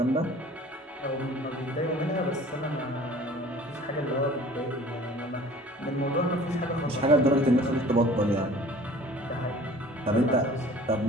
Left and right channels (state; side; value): normal; both; correlation 0.48